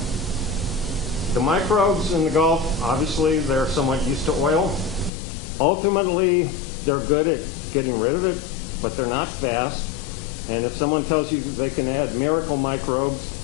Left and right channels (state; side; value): drops out; right; at 5.1 s